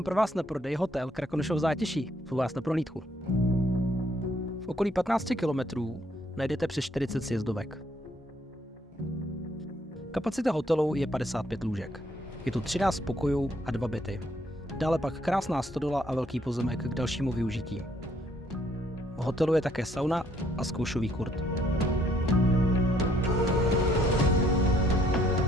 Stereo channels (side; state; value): both; normal; correlation 0.67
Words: pro vás na prodej hotel Krakonošov Zátiší. Zvu vás na prohlídku. V okolí 15 kilometrů najdete přes 40 sjezdovek. Kapacita hotelu je 55 lůžek. Je tu 13 pokojů a 2 byty. Dále pak krásná stodola a velký pozemek k dalšímu využití. V hotelu je také sauna a zkoušový kurt.